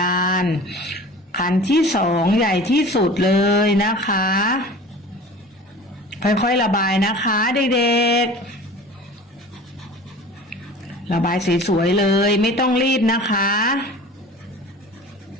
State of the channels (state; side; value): normal; both; correlation 0.41